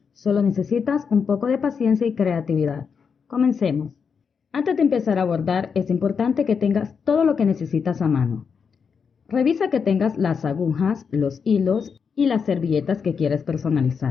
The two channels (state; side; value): quieter; right; 6.2 dB